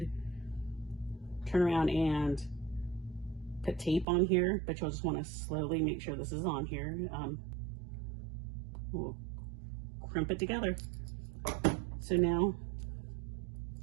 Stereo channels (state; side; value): drops out; left; at 4.0 s